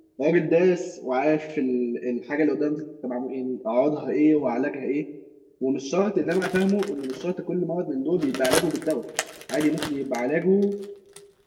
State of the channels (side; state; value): both; identical; correlation 1.00